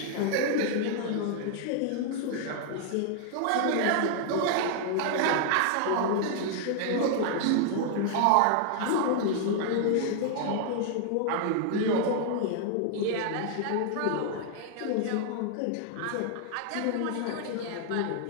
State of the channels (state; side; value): different; both; correlation 0.00